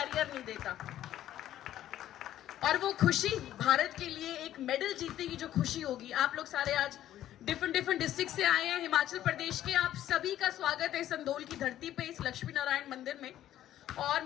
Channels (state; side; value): quieter; right; 12.4 dB